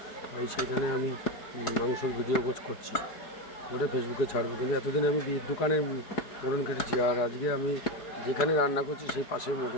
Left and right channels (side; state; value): right; late; 4.7 ms